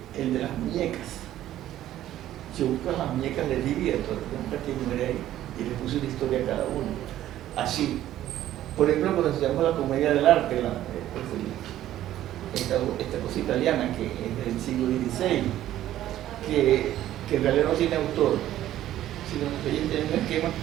el de las muñecas. Yo busco las muñecas de Divierto, y le puse una historia a cada uno. Así. Por ejemplo, cuando estudiamos la comedia del arte, esta cosa italiana que es del siglo XVI, que en realidad no tiene autor, sino que ella tiene un esquema,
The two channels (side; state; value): left; quieter; 13.0 dB